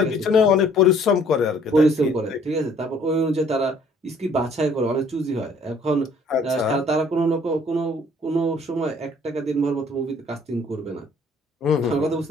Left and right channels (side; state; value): both; normal; correlation 0.58